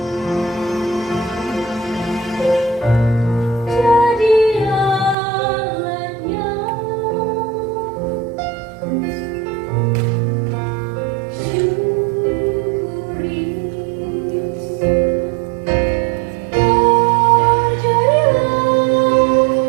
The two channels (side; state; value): left; drops out; at 5.2 s